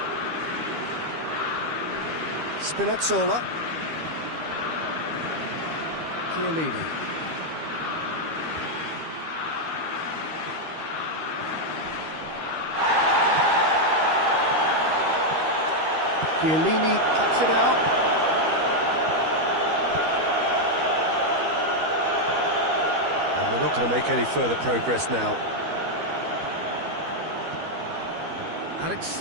Spinazzola. Chiellini. Chiellini cuts it out. And we're not going to make any further progress now.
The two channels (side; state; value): left; late; 13 ms